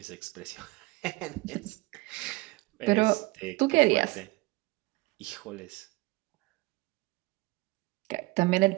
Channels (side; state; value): left; quieter; 22.3 dB